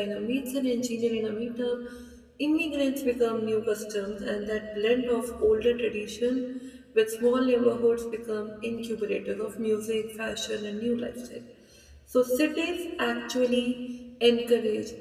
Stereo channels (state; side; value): identical; both; correlation 1.00